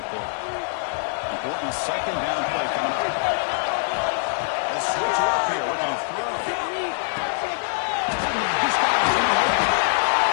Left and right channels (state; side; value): silent; right; digital silence